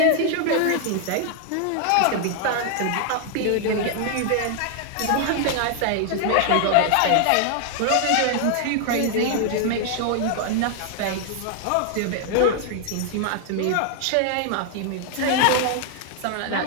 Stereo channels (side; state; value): both; different; correlation 0.00